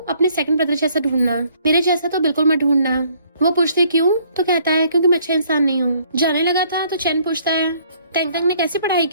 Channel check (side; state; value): both; inverted; correlation -0.62